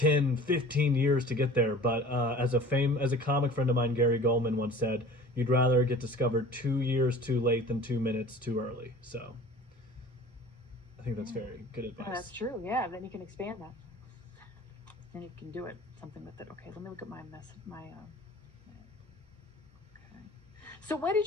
15 years to get there. But as a comic friend of mine, Gary Goldman, once said, you'd rather get discovered 2 years too late than 2 minutes too early. So I think that's Yeah. very good Yeah, that's advice. true. Yeah, then you can expand that. And you can do it something with it. Okay, let me look at my mess. Okay. So when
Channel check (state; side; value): normal; both; correlation 0.44